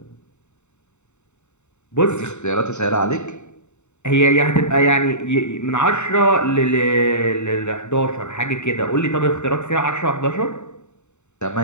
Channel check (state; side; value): late; right; 0.83 ms